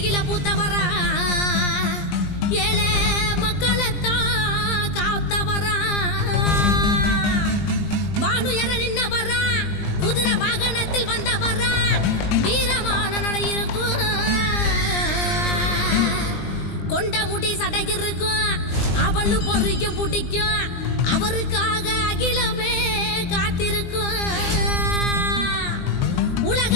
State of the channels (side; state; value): right; late; 20 ms